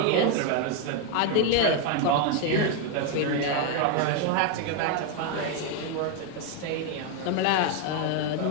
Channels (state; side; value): different; both; correlation 0.01